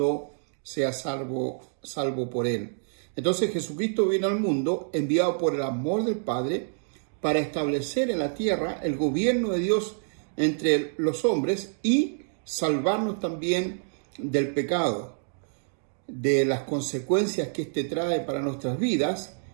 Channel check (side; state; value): left; silent; digital silence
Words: sea salvo por él. Entonces Jesucristo vino al mundo enviado por el amor del Padre para establecer en la tierra el gobierno de Dios entre los hombres y salvarnos también del pecado, de las consecuencias que éste trae para nuestras vidas